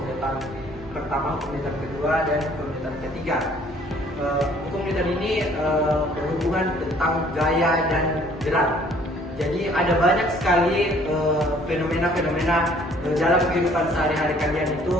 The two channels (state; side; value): normal; both; correlation 0.58